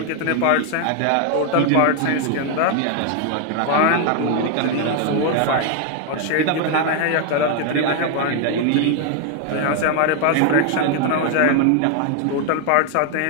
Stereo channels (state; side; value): different; both; correlation 0.00